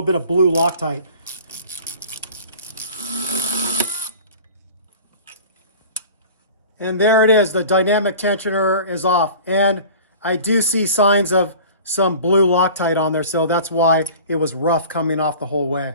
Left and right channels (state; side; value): inverted; both; correlation -0.42